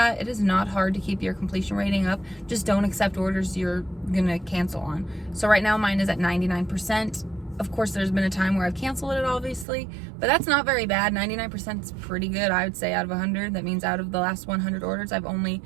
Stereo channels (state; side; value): drops out; left; at 9.7 s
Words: It is not hard to keep your completion rating up. Just don't accept orders you're gonna cancel on. So right now mine is at 99%. Of course, there's been a time where I've canceled it, obviously, but that's not very bad. 99% is pretty good, I would say, out of 100. That means out of the last 100 orders, I've only